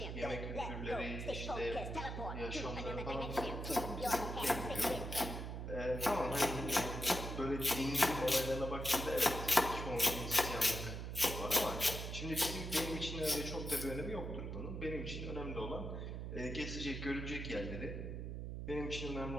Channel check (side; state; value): right; noise; hum, 5 dB below the sound